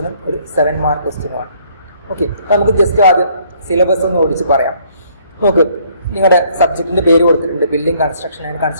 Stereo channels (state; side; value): inverted; both; correlation -0.63